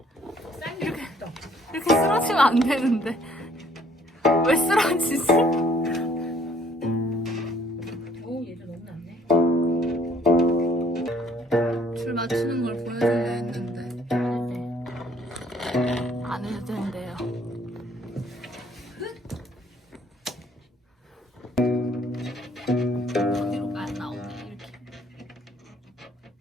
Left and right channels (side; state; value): both; normal; correlation 0.61